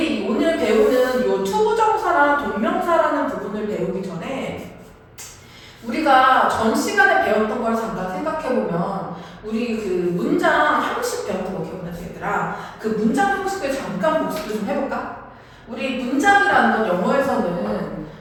오늘 배우는 이 투부정사나 동명사라는 부분을 배우기 전에 우리가 전 시간에 배웠던 걸 잠깐 생각해보면, 우리 그 문장 형식 배웠던 거 기억나지 얘들아? 그 문장 형식을 잠깐 복습을 좀 해볼까? 우리 문장이라는 건 영어에서는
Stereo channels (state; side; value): identical; both; correlation 1.00